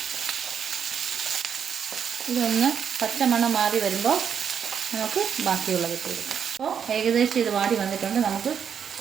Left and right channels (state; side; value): quieter; left; 7.6 dB